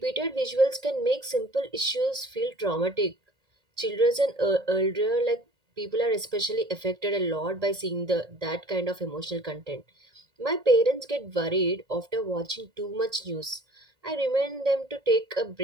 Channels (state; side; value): late; left; 1.8 ms